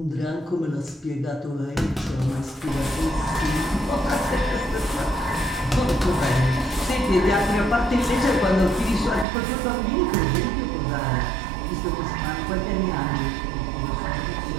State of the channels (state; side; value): drops out; left; at 9.2 s